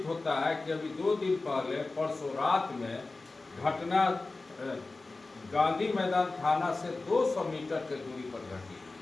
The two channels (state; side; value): quieter; right; 3.4 dB